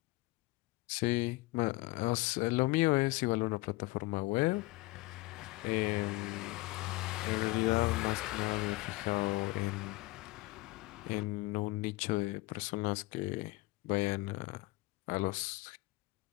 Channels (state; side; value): quieter; right; 21.9 dB